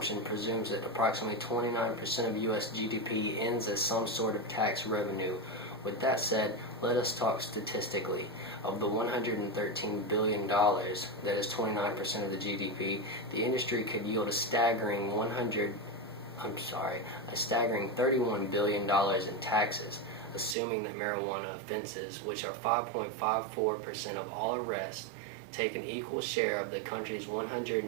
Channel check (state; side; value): drops out; left; at 20.6 s